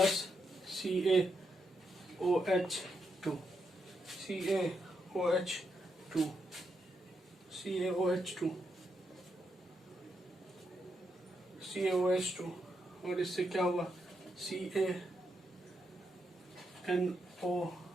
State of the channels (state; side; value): normal; both; correlation 0.82